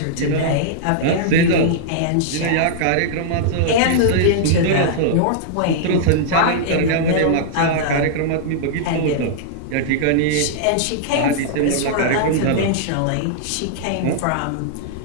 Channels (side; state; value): both; different; correlation -0.02